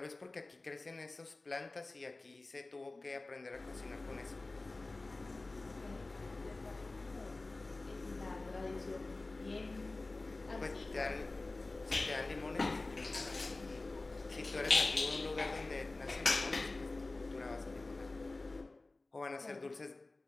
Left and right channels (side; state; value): right; quieter; 3.2 dB